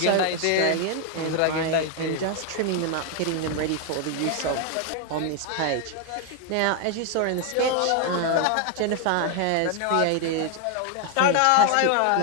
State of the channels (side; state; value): both; different; correlation 0.01